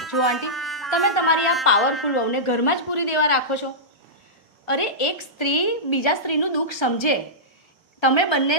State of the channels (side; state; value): both; normal; correlation -0.14